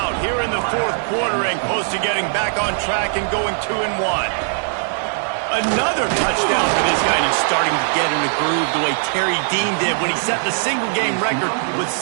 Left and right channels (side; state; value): left; silent; digital silence